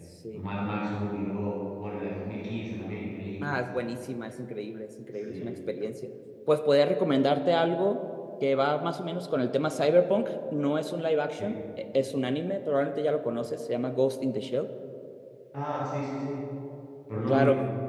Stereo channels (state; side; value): identical; both; correlation 1.00